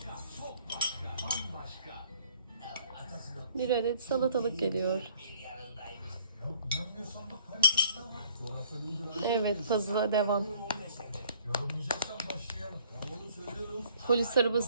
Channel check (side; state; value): both; inverted; correlation -0.57